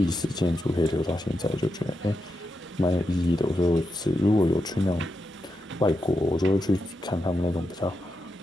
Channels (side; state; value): both; normal; correlation 0.86